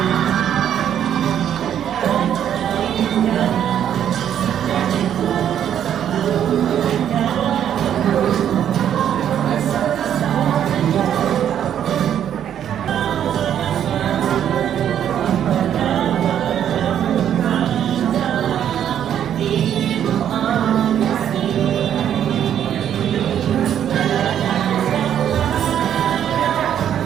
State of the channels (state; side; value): quieter; left; 9.8 dB